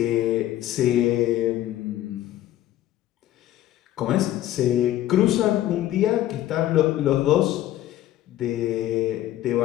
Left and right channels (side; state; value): right; quieter; 13.6 dB